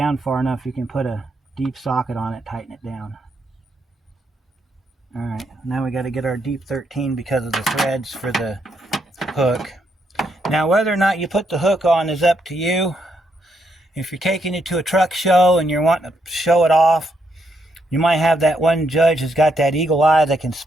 far enough, you can put a deep socket on it, tighten it down. Alright, now we got to get our deep 13 because of the threads for the hook. Now whether or not you put the hook on is up to you. If you're taking it to a truck show and you're wanting to show it off, you might have that one judge who's got that eagle eye that can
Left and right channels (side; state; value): both; normal; correlation 0.77